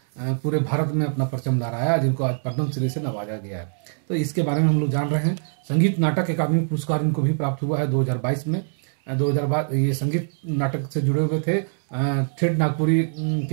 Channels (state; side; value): silent; left; digital silence